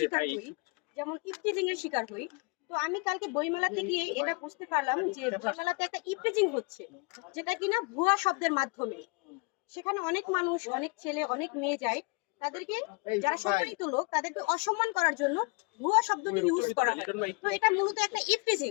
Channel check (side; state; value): right; quieter; 29.2 dB